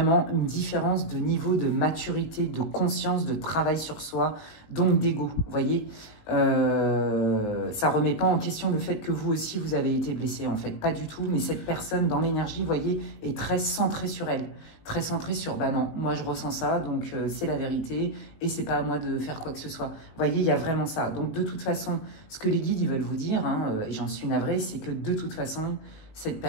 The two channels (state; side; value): late; right; 19 ms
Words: une différence de niveau de maturité, de conscience, de travail sur soi, donc d'ego, vous voyez. Ça ne remet pas en question le fait que vous aussi, vous avez été blessé, en fait. Pas du tout, mais cette personne, dans l'énergie, vous voyez, est très centrée sur elle. Très centrée sur, bah non, moi je ressens ça, donc c'est la vérité, et c'est pas à moi de faire quoi que ce soit. Vous voyez, il y a vraiment ça. Donc de toute façon, ce que les guides ils veulent vous dire, hein, et j'en suis navrée, c'est que de toute façon, cette